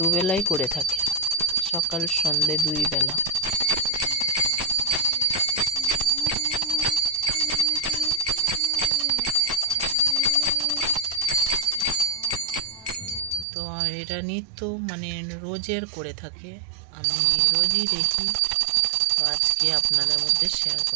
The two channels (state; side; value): drops out; left; at 13.5 s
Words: করে থাকে, সকাল সন্ধ্যে দুই বেলা। তো এটা নিত্য মানে রোজের করে থাকে, আমি রোজই দেখি। তো আজকে আপনাদের মধ্যে শেয়ার